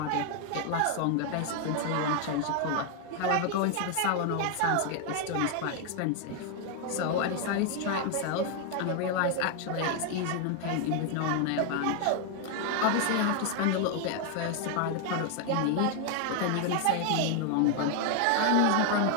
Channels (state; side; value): different; both; correlation 0.00